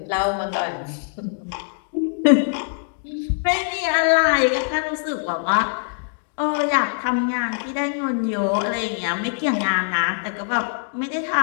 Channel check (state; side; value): silent; right; digital silence